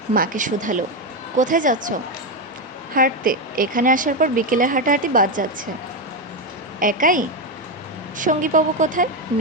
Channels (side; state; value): both; normal; correlation 0.09